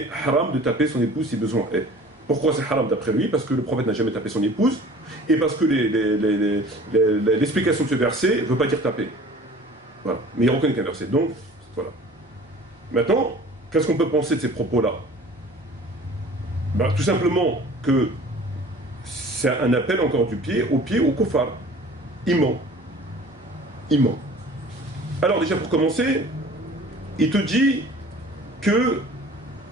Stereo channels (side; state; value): both; normal; correlation 0.46